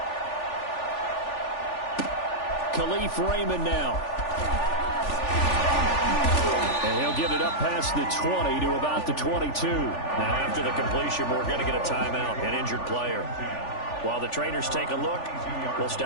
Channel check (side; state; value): right; late; 3.4 ms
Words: Khalif Raymond now. And he'll get it up past the 20 to about the 22. Now, after the completion, we're going to get a timeout, an injured player. While the trainers take a look, we'll